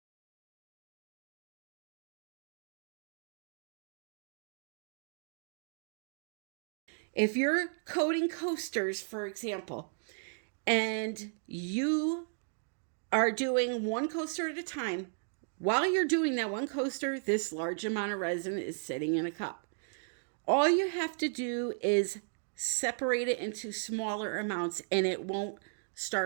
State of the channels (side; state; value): left; silent; digital silence